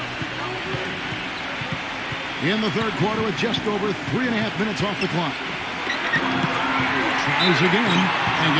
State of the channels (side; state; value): both; identical; correlation 1.00